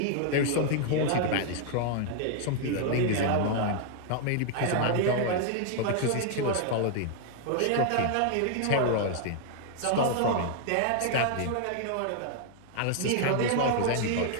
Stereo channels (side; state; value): both; different; correlation 0.00